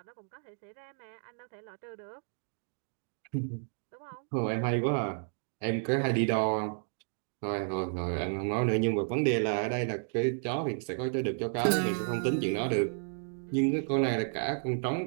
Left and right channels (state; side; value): silent; left; digital silence